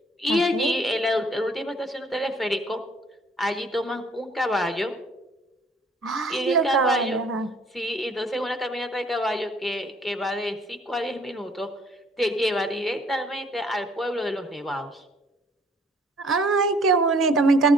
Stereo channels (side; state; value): both; normal; correlation 0.59